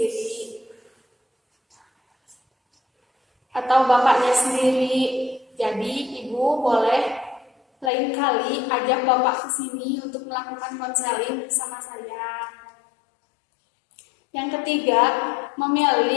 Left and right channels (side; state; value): right; drops out; at 7.9 s